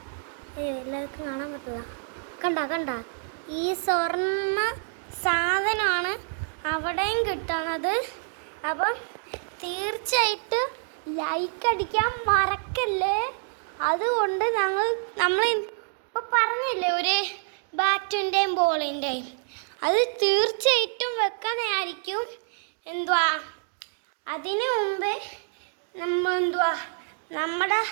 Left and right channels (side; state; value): left; silent; digital silence